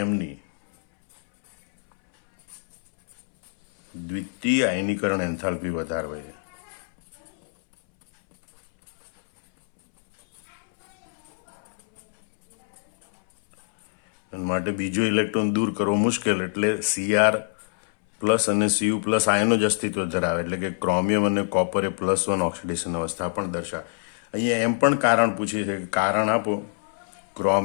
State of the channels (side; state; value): right; silent; 62 dB below the other